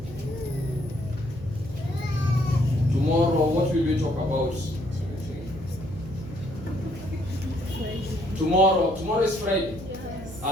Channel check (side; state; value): right; noise; hum, 14 dB below the sound